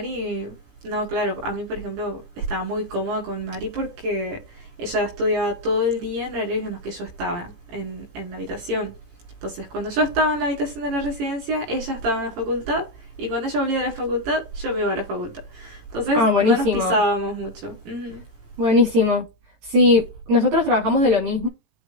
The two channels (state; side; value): late; left; 18 ms